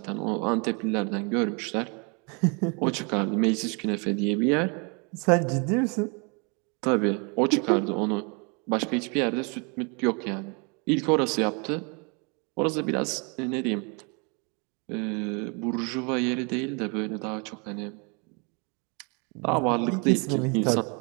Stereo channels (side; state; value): left; quieter; 33.2 dB